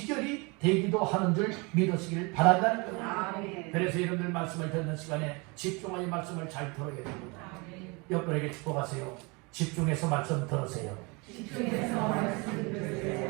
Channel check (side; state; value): left; quieter; 28.6 dB